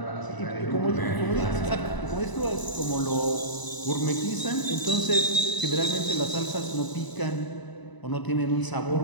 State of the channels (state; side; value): late; right; 1.0 ms